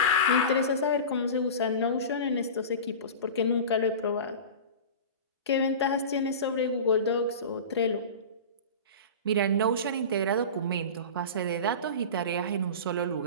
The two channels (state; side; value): inverted; both; correlation -0.30